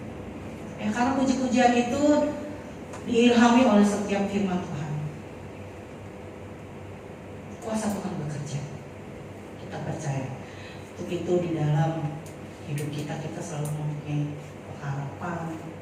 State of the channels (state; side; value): identical; both; correlation 1.00